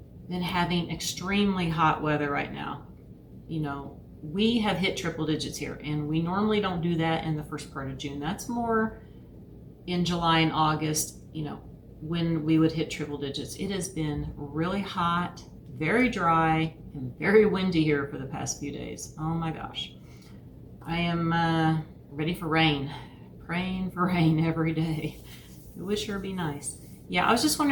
been having extremely hot weather right now? You know, we have hit triple digits here, and we normally don't do that in the first part of June. That's more in July and August, you know, when we would hit triple digits. It has been really hot, very dry, and very windy here for the past few days. Oh my gosh. I am ready for rain, praying for rain every day. It would sure be nice. Yeah, I was just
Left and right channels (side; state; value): both; identical; correlation 1.00